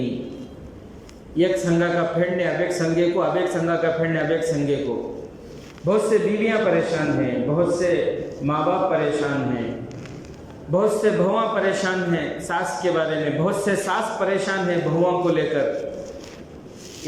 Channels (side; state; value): both; identical; correlation 1.00